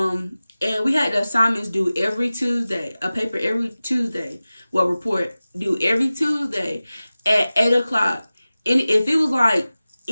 we had the assignments due every Tuesday, a paper every Tuesday, well, report due every Tuesday at 8 o'clock. And if it was like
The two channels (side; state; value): both; inverted; correlation -0.97